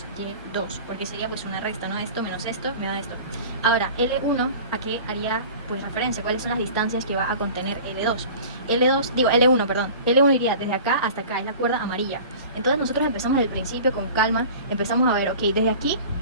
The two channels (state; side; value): inverted; both; correlation -0.40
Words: Y2, porque sería pues una resta, ¿no? Esto menos esto me da esto. Ahora, L1, ¿a qué haría pues referencia? ¿Cuáles son las distancias que va a contener L2? L1, perdón. L1 iría desde acá hasta acá, es la cuerda amarilla. Entonces nosotros empezamos desde el principio con calma, empezamos a ver, ok, desde aquí